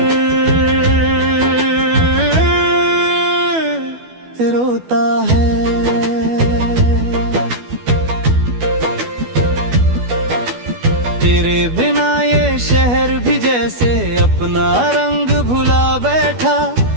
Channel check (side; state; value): left; late; 12 ms